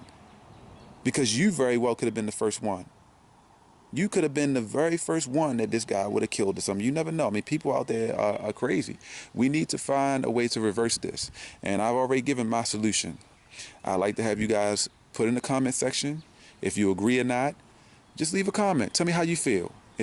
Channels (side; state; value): both; identical; correlation 1.00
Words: Because you very well could have been the first one. You could have been the very first one that this guy would have killed or something. You never know. I mean, people out there are crazy. We need to find a way to reverse this. And I've already given my solution. I'd like to have you guys put in the comment section if you agree or not. Just leave a comment. Tell me how you feel.